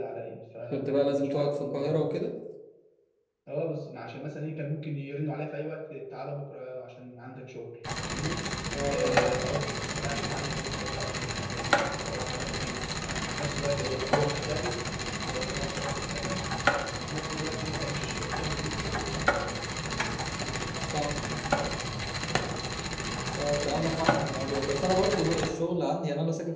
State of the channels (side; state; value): both; identical; correlation 1.00